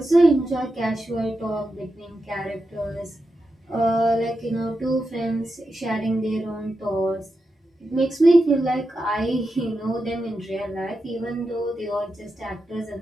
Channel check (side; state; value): both; normal; correlation 0.89